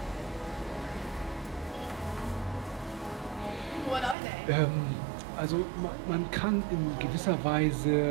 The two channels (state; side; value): drops out; left; at 4.2 s